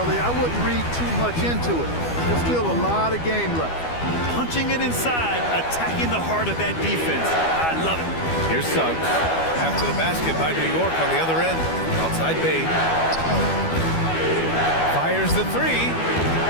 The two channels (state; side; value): late; right; 12 ms